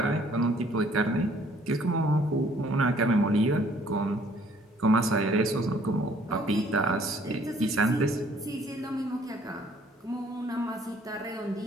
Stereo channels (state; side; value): normal; both; correlation 0.60